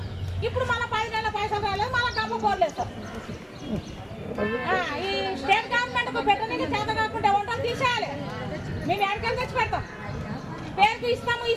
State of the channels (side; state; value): both; identical; correlation 1.00